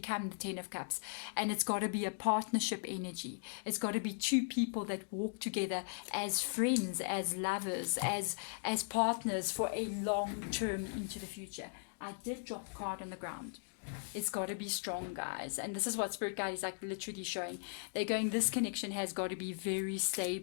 10 of Cups. And it's got to be a partnership energy. It's got to be two people that walk together as friends, as lovers, as partners for a long term into the future. I did drop a card on the ground. It's got to be strong, guys. And this is what Spirit Guide is like literally showing. They're going, this connection has got to be very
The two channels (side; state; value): right; silent; digital silence